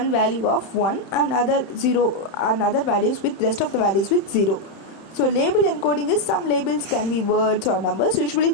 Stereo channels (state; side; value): late; right; 31 ms